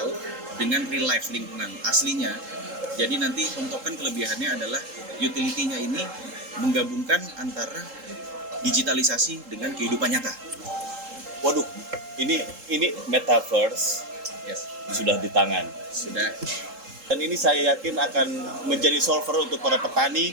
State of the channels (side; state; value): left; late; 3.7 ms